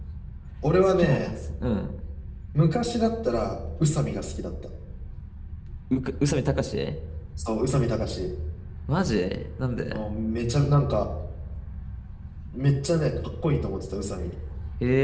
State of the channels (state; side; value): identical; both; correlation 1.00